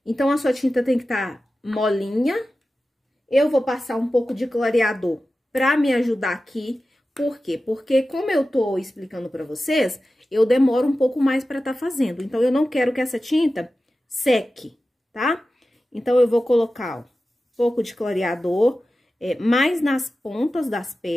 Então, a sua tinta tem que estar molinha. Eu vou passar um pouco de clareador pra me ajudar aqui. Por quê? Porque como eu tô explicando pra vocês, eu demoro um pouco mais pra tá fazendo. Então, eu não quero que essa tinta seque, tá? Então, eu vou colocar, ó, um pouco de clareador, mais nas pontas das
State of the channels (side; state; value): both; normal; correlation 0.94